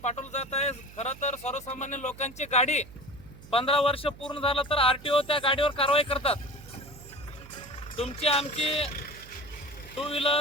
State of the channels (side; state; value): right; noise; hum, 19 dB below the sound